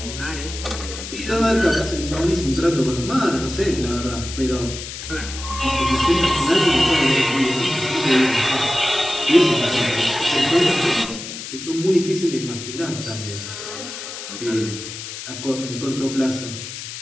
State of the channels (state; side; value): noise; left; hiss, 9 dB below the sound